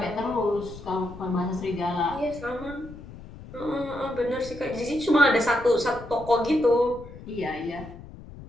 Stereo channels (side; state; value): left; noise; rumble, 15 dB below the sound